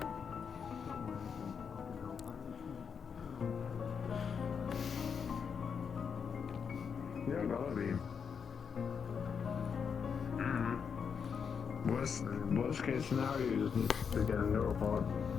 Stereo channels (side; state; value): right; quieter; 6.5 dB